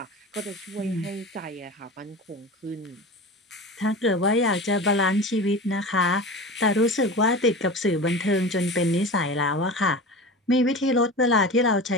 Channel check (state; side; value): normal; both; correlation 0.31